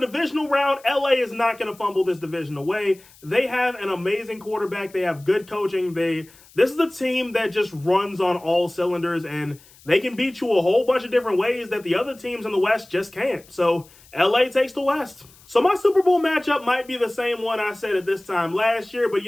round, LA is not going to fumble this division away. They have an amazing quarterback. They have good coaching. This is a team that just runs on all cylinders, and they can beat you a whole bunch of different ways that the other teams in the West just can't. So LA takes the West. So my Super Bowl matchup might be the same one I said at this time last year, but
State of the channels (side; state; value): left; noise; hiss, 26 dB below the sound